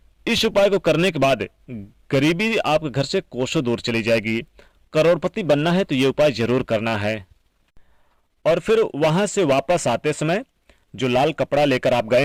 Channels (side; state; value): both; identical; correlation 1.00